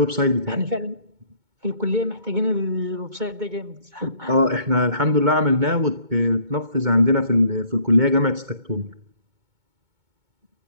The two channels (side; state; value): left; late; 2.2 ms